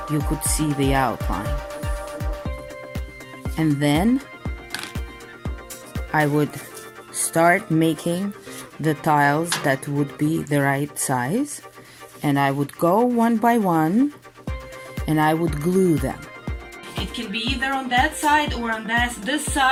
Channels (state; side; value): identical; both; correlation 1.00